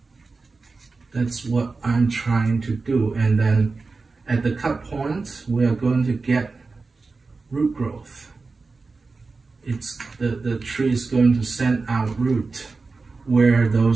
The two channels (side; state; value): left; quieter; 4.1 dB